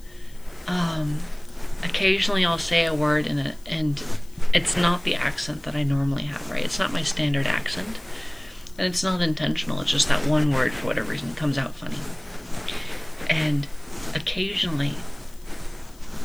occasionally I'll say a word and it's not the accent that I normally have, right? It's not my standard accent, and it's not intentional. It's just that one word, for whatever reason, comes out funny. And occasionally,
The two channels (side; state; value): left; noise; hiss, 26 dB below the sound